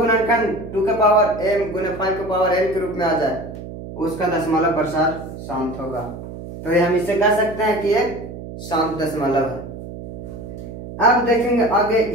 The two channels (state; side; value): noise; right; hum, 11 dB below the sound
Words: 2 के पावर m गुने 5 के पावर n के रूप में आ जाए उसका दशमलव प्रसार शांत होगा। तो ये हम इसे कह सकते हैं कि एक शांत दशमलव है। अब देखेंगे आगे,